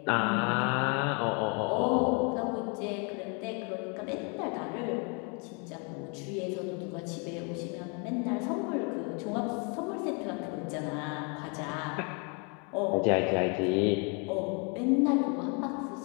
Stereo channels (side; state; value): right; quieter; 35.2 dB